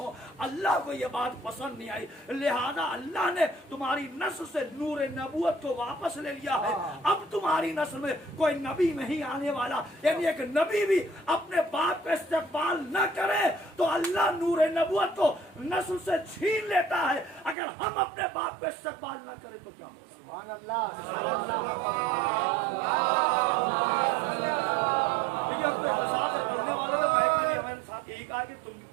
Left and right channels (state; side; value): drops out; left; at 17.6 s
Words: اللہ کو یہ بات پسند نہیں آئی، لہذا اللہ نے تمہاری نسل سے نور نبوت کو واپس لے لیا ہے۔ اب تمہاری نسل میں کوئی نبی نہیں آنے والا، یعنی ایک نبی بھی اپنے باپ کا استقبال نہ کرے تو اللہ نور نبوت کو نسل سے چھین لیتا ہے۔ اگر ہم اپنے باپ کا استقبال نہ کریں تو کیا ہوگا؟ سبحان اللہ، دیکھیے اب تو اختصار سے پڑھنے والے نے مائک میں بھی ہمارے ساتھ یہی کہا کہ تم